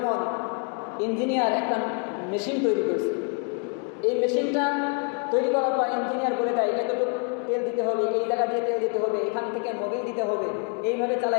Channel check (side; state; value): right; quieter; 36.8 dB